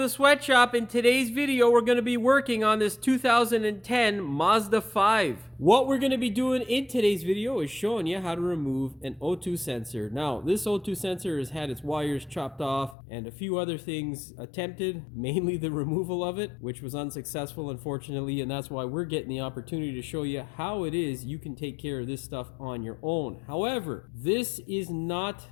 sweatshop. In today's video, we're going to be working on this 2010 Mazda 5. What we're going to be doing in today's video is showing you how to remove an O2 sensor. Now, this O2 sensor has had its wires chopped off and a few other things attempted, mainly the removal of it, which was unsuccessful, unfortunately, and that's why we're getting the opportunity to show you how it is you can take care of this stuff on your own. However, this is not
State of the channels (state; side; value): drops out; right; at 13.0 s